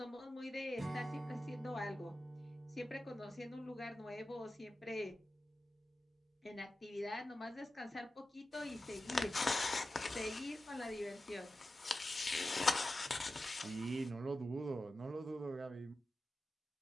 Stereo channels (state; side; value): normal; both; correlation 0.93